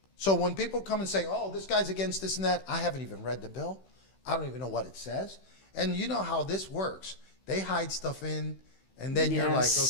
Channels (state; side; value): late; right; 15 ms